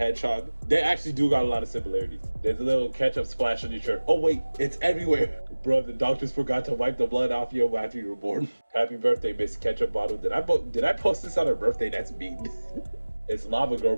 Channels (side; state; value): both; inverted; correlation -1.00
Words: They actually do got a lot of similarities. There's a little ketchup splash on your shirt. Oh wait, it's everywhere. Bro, the doctors forgot to wipe the blood off you after you were born. Happy birthday, Miss Ketchup Bottle. Did I post this on her birthday? That's mean. It's Lava Girl